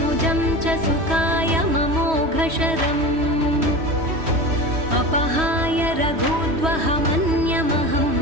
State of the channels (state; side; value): late; left; 3.1 ms